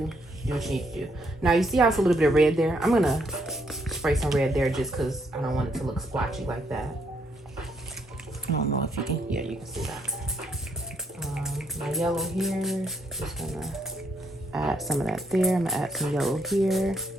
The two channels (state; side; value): normal; both; correlation 0.74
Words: what you need to do. Now, you see how it's a little bit of red there? I'm going to spray some red there just because I don't want it to look splotchy like that. I don't know if you can. Yeah, you can see that. My yellow here. Just going to add some of that there. I'm going to add some yellow here.